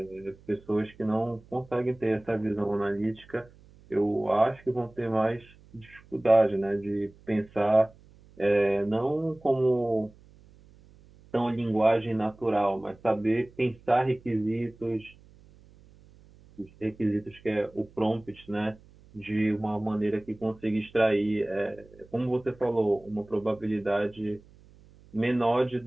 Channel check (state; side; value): noise; right; hum, 25 dB below the sound